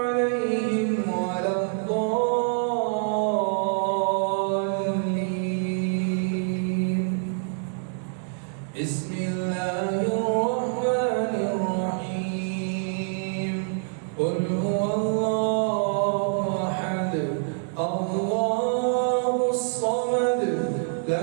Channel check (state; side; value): silent; left; 60 dB below the other